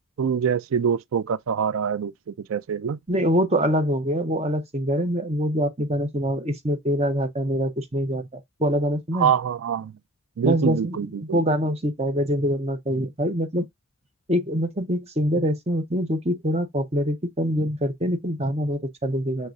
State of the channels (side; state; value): both; normal; correlation 0.42